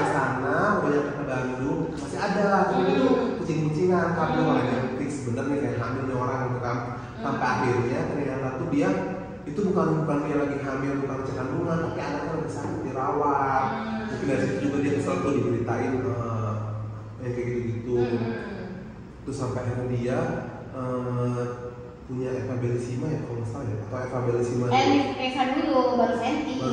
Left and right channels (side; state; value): both; identical; correlation 1.00